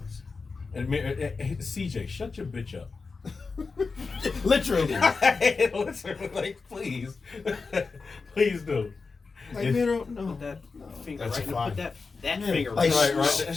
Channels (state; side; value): quieter; right; 4.4 dB